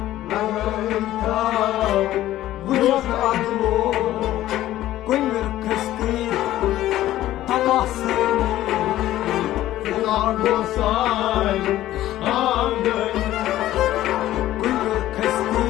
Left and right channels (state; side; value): quieter; right; 14.2 dB